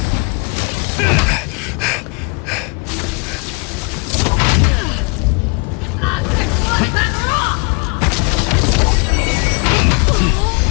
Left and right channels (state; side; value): quieter; right; 33.2 dB